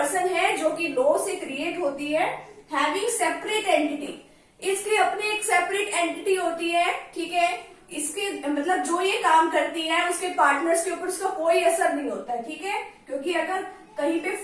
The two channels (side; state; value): both; identical; correlation 1.00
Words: है जो कि लॉ से क्रिएट होती है। हैविंग सेपरेट एंटिटी, इसकी अपनी एक सेपरेट एंटिटी होती है। ठीक है, इसके मतलब जो ये काम करती है उसके पार्टनर्स के ऊपर उसका कोई असर नहीं होता है, ठीक है। क्योंकि अगर कहीं पे